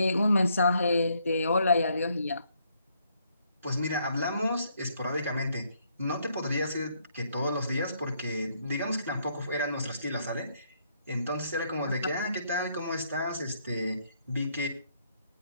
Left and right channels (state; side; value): inverted; both; correlation -0.72